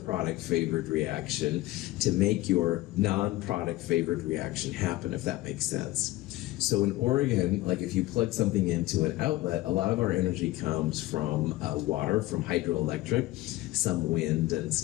favored reaction to make your non-product favored reaction happen, if that makes sense. So in Oregon, like if you plug something into an outlet, a lot of our energy comes from water, from hydroelectric, some wind and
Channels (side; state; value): right; quieter; 17.6 dB